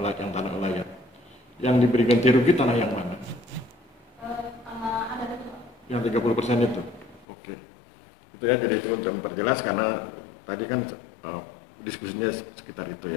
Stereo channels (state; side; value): drops out; right; at 7.2 s